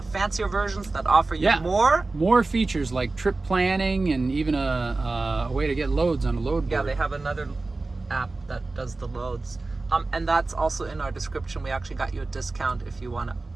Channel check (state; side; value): quieter; left; 3.4 dB